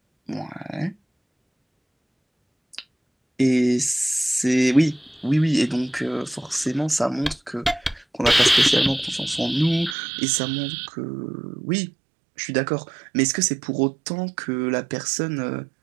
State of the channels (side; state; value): left; drops out; at 10.0 s